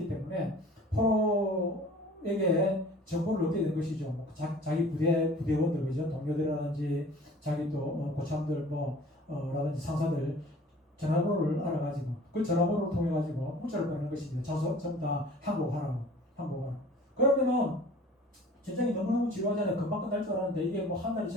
때문에 포로에게 정보를 얻게 된 것이죠. 자기 부대원들, 그죠? 동료들이라든지 자기 또 고참들 라든지 상사들 전화번호를 알아가지고 그 전화번호를 통해 가지고 문자를 보내는 것입니다. 전부 다 항복하라고. 그러면은 전쟁이 너무너무 지루하잖아요. 금방 끝날 줄 알았는데 이게 한 달이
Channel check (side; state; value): both; normal; correlation 0.47